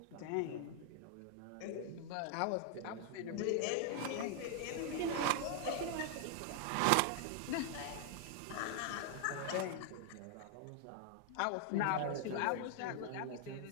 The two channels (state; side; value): different; both; correlation 0.00